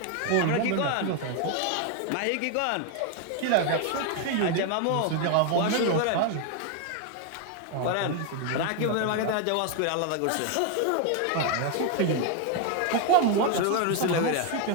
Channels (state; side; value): different; both; correlation 0.01